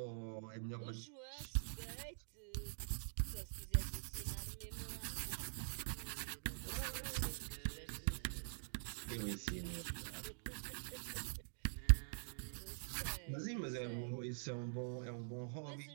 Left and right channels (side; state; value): left; silent; digital silence